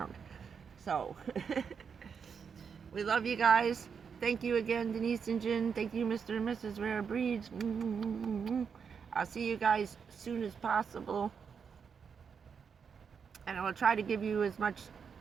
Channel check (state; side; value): quieter; left; 6.4 dB